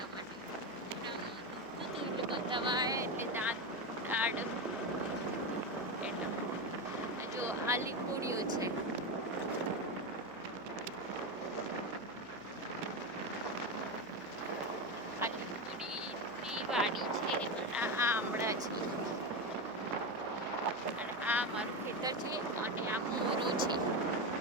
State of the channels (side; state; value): right; noise; hum, 25 dB below the sound